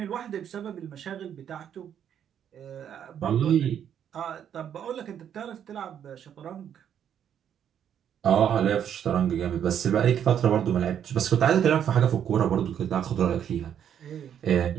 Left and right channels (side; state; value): left; quieter; 9.2 dB